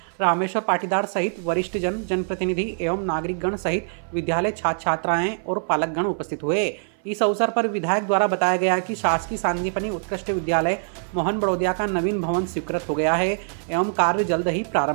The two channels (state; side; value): silent; left; 56 dB below the other